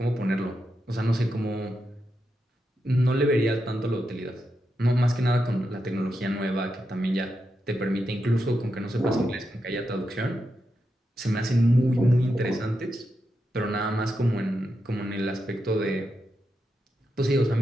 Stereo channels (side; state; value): both; normal; correlation 0.86